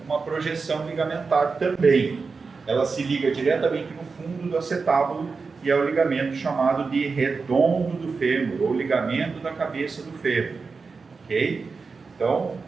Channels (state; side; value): quieter; left; 4.6 dB